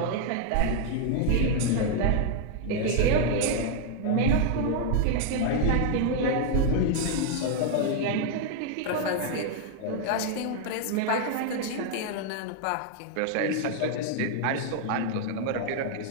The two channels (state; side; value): different; both; correlation 0.00